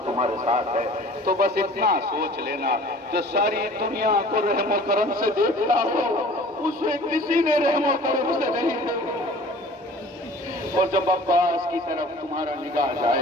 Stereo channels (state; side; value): normal; both; correlation 0.46